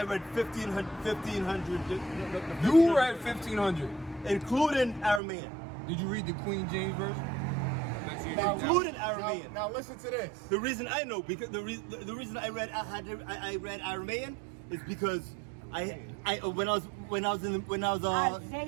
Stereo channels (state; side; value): drops out; left; at 5.2 s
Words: You read 1500. including Aramean. Did you read the Queen James version? Including Aramean. Now listen to this. The reason I know because the reason I read Aramean is because when I was